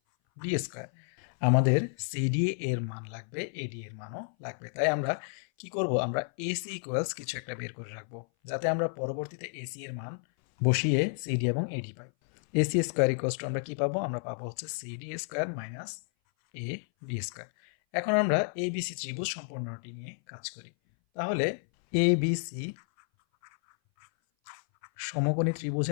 D square. আমাদের সিডি এর মান লাগবে, এডি এর মানও লাগবে, তাই আমরা কি করব? আমরা এসি ইকুয়ালস কিছু একটা বের করে রাখবো, যাতে আমরা পরবর্তীতে এসি এর মান বসিয়ে সিডি এবং এডি পাই। এসি স্কোয়ার ইকুয়ালস টু আমরা কি পাবো? আমরা পাবো হচ্ছে CD square minus A D square. এখন আমরা এবিসি ত্রিভুজ সম্পূর্ণটি নিয়ে কাজ করি। তাহলে এবিসি সমকোণী ত্রিভুজে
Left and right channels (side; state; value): right; silent; 57 dB below the other